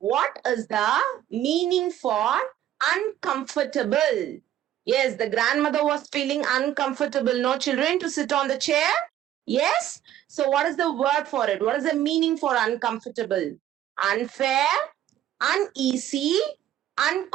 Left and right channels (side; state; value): left; quieter; 11.9 dB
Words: is the meaning for uncomfortable. Yes, the grandmother was feeling uncomfortable. No children to sit on the chair. Yes. So, what is the word for it? What is the meaning for uncomfortable? Unfair, uneasy,